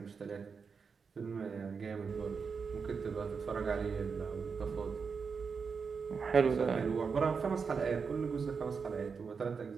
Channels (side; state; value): left; quieter; 5.6 dB